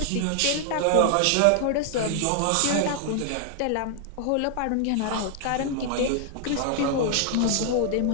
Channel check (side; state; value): both; different; correlation 0.00